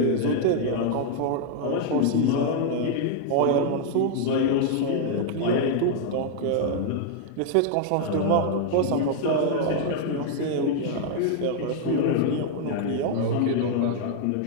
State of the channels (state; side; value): different; both; correlation 0.00